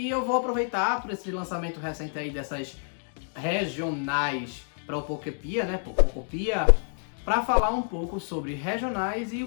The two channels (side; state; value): right; silent; 59 dB below the other